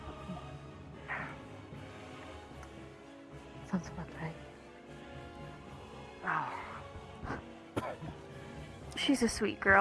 Sounds about right. She's a sweet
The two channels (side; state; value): both; identical; correlation 1.00